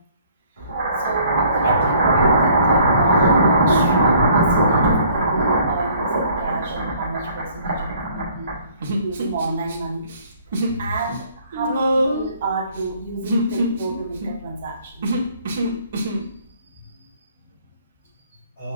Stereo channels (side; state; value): both; inverted; correlation -0.58